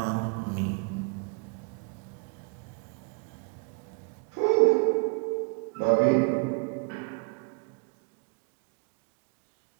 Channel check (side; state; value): left; quieter; 33.2 dB